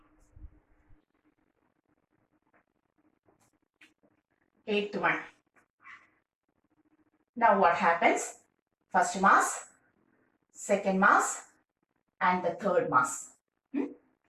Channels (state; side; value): identical; both; correlation 1.00